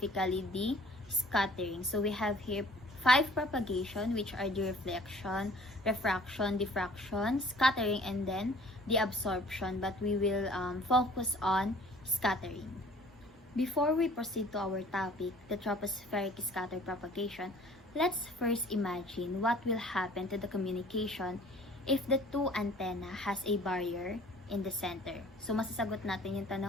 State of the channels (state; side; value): normal; both; correlation 0.52